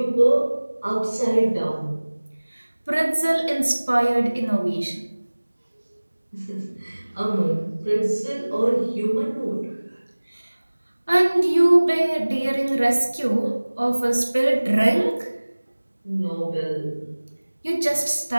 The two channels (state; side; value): inverted; both; correlation -1.00